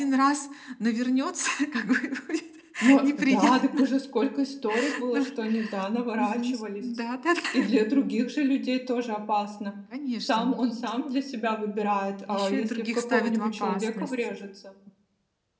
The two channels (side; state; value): both; identical; correlation 1.00